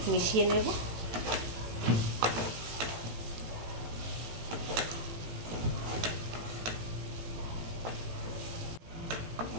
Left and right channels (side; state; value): left; late; 18 ms